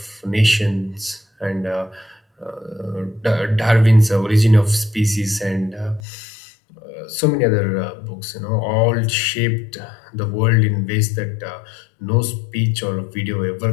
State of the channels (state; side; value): drops out; right; at 6.0 s